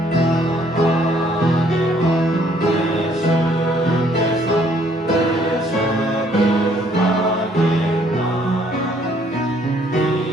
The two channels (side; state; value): both; normal; correlation 0.64